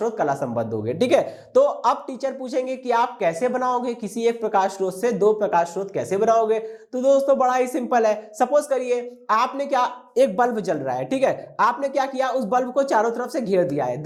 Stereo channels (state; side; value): identical; both; correlation 1.00